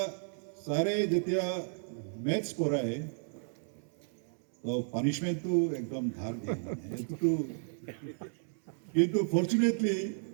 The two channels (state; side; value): silent; left; 56 dB below the other